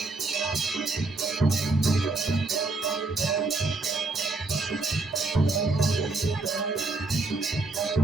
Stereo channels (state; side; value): quieter; left; 3.4 dB